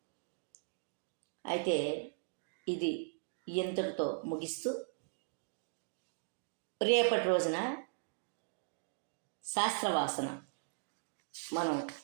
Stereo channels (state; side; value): silent; left; digital silence